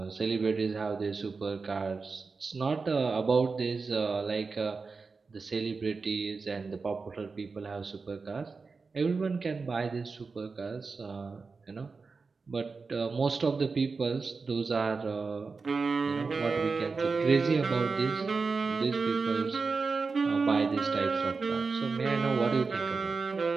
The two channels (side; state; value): left; quieter; 4.5 dB